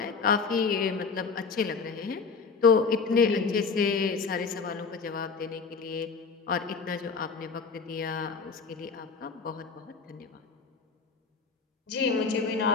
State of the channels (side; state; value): right; quieter; 5.0 dB